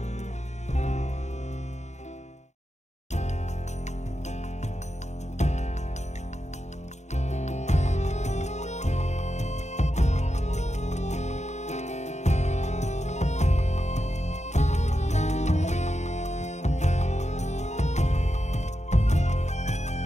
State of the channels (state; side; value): late; right; 0.33 ms